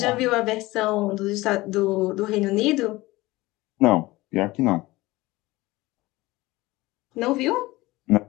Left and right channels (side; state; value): right; quieter; 19.7 dB